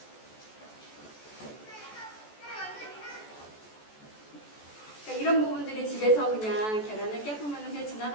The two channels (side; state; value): right; late; 14 ms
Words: 그러니까 이런 부분들이 집에서 그냥 계란을 깨보면 그냥